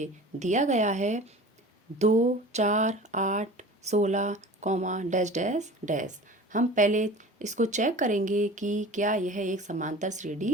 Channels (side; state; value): both; normal; correlation 0.40